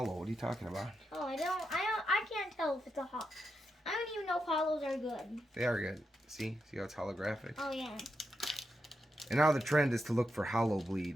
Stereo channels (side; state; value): both; normal; correlation 0.85